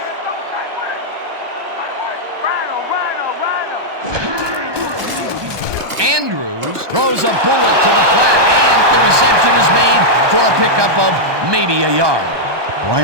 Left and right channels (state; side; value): late; left; 1.2 ms